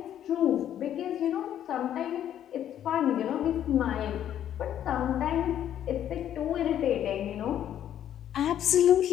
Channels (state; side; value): quieter; right; 10.6 dB